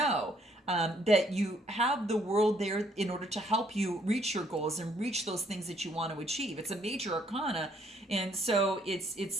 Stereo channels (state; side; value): normal; both; correlation 0.67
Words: that you have the world there in order to help you reach your goals and reach those things that you want to achieve. It's a major arcana. And so